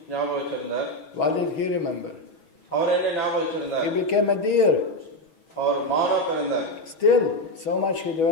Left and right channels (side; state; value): right; late; 6.3 ms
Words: ஞாபகம் வச்சிருந்தார். What did he remember? அவர் என்ன ஞாபகம் வச்சிருந்தார்? He became a deer. அவர் மானா பிறந்தார். Still, so much he